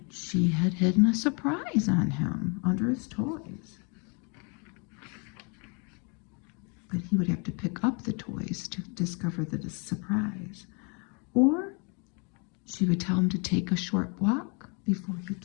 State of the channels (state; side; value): quieter; right; 34.8 dB